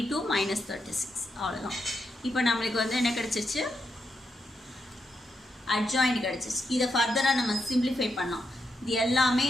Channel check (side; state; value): both; normal; correlation 0.83